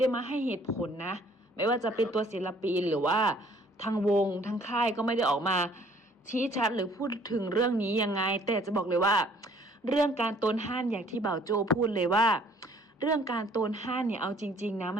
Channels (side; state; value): both; normal; correlation 0.58